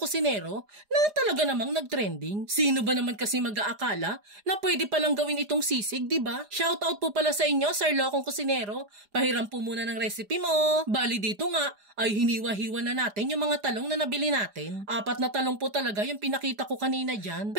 na talaga namang nag-trending. Sino ba naman kasi mag-aakala na pwede palang gawin itong sisig, diba? Shoutout po pala sa inyo, Sir Lokong Kusinero. Pahiram po muna ng recipe mo. Bali dito nga ay hiniwa-hiwa na natin yung mga talong na nabili natin. 4 na talong po talaga yung pinakita ko kanina dyan.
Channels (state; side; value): late; left; 4.9 ms